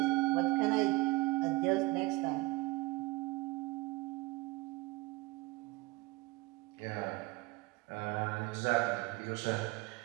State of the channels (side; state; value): left; quieter; 22.1 dB